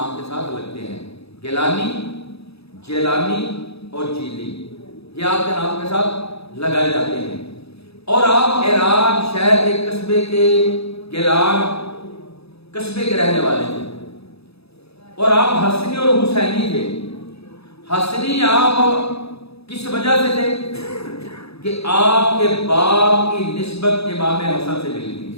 کے ساتھ لگتے ہیں، گیلانی، جیلانی اور جیلی، یہ آپ کے نام کے ساتھ لگائے جاتے ہیں۔ اور آپ ایران شہر کے قصبے کے گیلان قصبے کے رہنے والے تھے، اور آپ حسنی اور حسینی تھے۔ حسنی آپ کس وجہ سے تھے کہ آپ کے باپ کی نسبت امام حسن سے ملی تھی،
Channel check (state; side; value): late; right; 0.78 ms